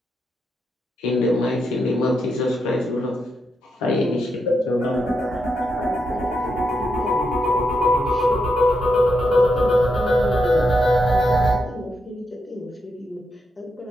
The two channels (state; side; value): normal; both; correlation 0.83